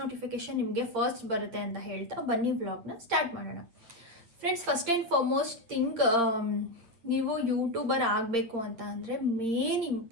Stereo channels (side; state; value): left; late; 8.9 ms